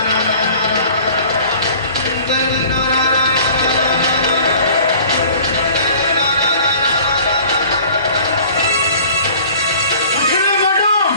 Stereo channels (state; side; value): inverted; both; correlation -0.47